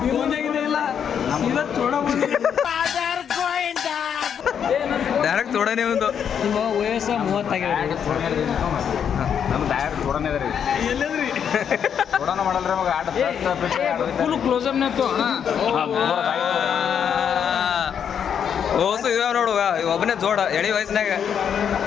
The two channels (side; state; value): right; quieter; 8.0 dB